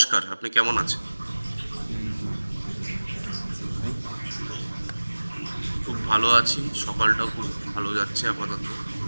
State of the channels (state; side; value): inverted; both; correlation -1.00